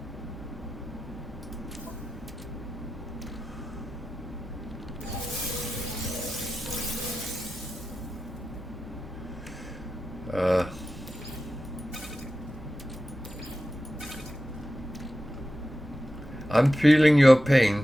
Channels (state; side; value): normal; both; correlation 0.93